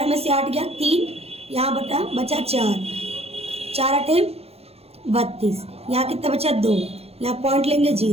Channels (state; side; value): late; left; 0.29 ms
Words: में से 8 गया 3, यहाँ बचा 4 8 32, यहाँ कितना बचा 2, यहाँ पॉइंट लेंगे